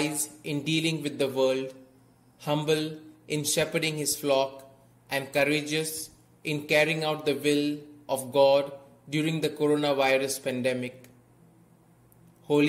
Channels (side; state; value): both; identical; correlation 1.00